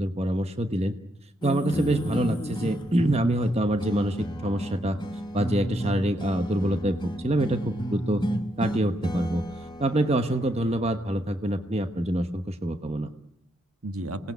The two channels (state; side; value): normal; both; correlation 0.78